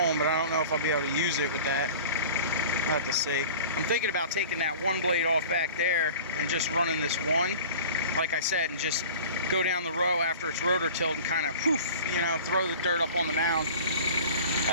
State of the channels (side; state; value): both; inverted; correlation -0.41